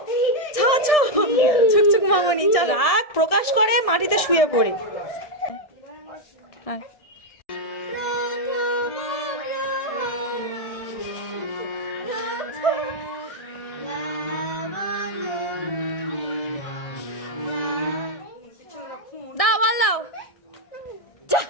ছুকছুক মামনি রাগ প্রকাশ করে মাটিতে শুয়ে পড়ে। দাও বল দাও, যা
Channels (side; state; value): right; late; 1.6 ms